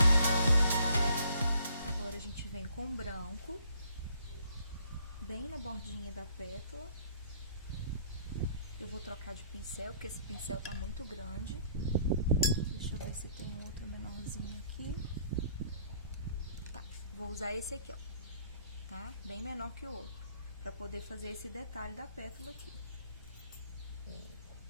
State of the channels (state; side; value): inverted; both; correlation -0.62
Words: Agora, a gente vem com branco, bem na bordinha da pétala. Eu vou trocar de pincel, porque esse pincel tá muito grande. Deixa eu ver se tem um outro menorzinho aqui. Tá, vou usar esse aqui, ó. Tá? Bem menor que o outro, pra poder fazer esse detalhe da pétala aqui.